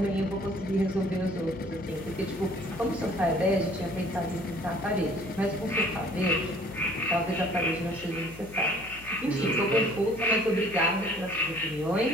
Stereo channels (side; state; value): left; noise; hum, 18 dB below the sound